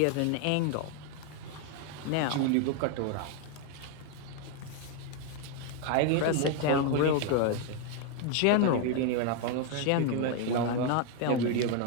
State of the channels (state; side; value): different; both; correlation 0.01